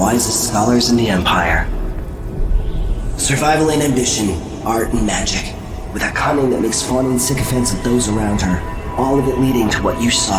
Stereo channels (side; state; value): both; identical; correlation 1.00